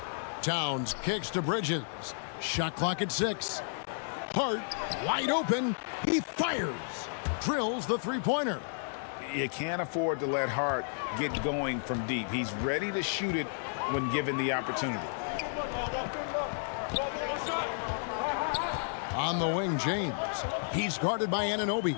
Towns kicks to Bridges. Shot clock at 6. Hart wide open. He fires. Drills the three-pointer. You can't afford to let Hart get going from deep. He's ready to shoot it when given the opportunity. On the wing, James. He's guarded by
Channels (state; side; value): silent; right; digital silence